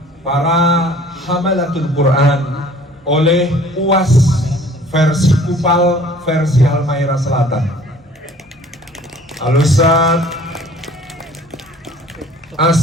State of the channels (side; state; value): both; normal; correlation 0.52